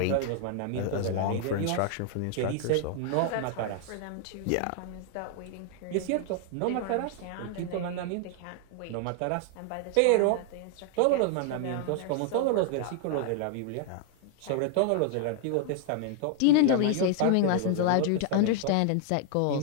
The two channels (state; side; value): different; both; correlation 0.00